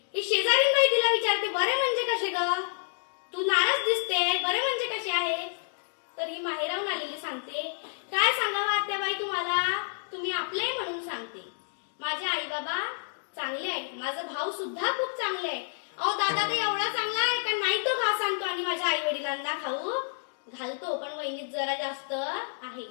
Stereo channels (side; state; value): right; silent; digital silence